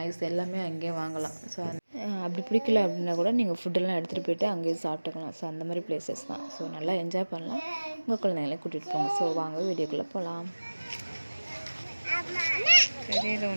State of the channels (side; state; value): both; inverted; correlation -1.00